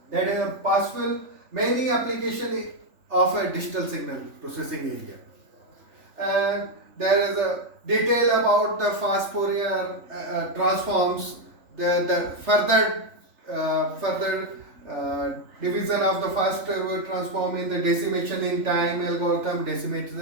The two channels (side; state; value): left; late; 3.5 ms